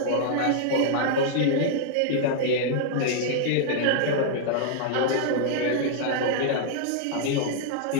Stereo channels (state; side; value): different; both; correlation -0.01